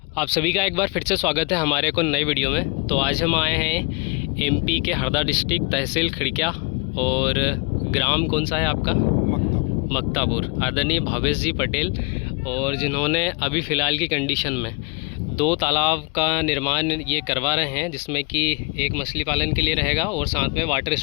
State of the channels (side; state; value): right; quieter; 30.7 dB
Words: आप सभी का एक बार फिर से स्वागत है हमारे को नई वीडियो में। तो आज हम आए हैं एमपी के हरदा डिस्ट्रिक्ट, तहसील खिड़किया, और ग्राम कौन सा है आपका? मक्तापुर। आदरणीय भावेश जी पटेल, और जिन्होंने अभी फ़िलहाल की कंडीशन में 2 तालाब का निर्माण ये करवा रहे हैं, जिसमें कि एक मछली पालन के लिए रहेगा और साथ में वाटर